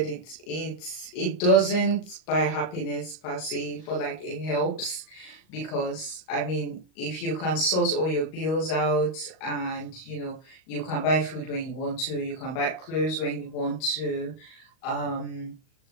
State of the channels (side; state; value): right; late; 38 ms